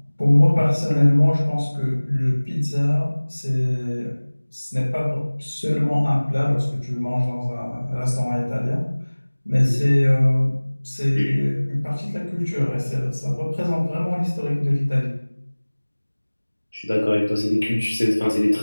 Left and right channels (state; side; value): inverted; both; correlation -1.00